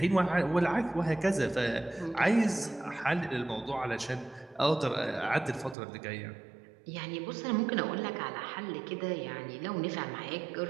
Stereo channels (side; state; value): left; drops out; at 5.8 s